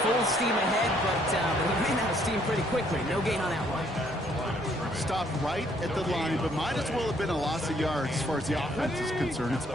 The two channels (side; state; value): both; normal; correlation 0.66